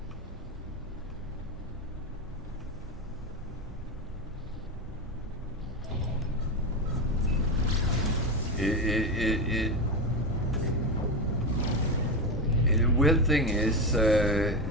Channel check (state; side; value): normal; both; correlation 0.16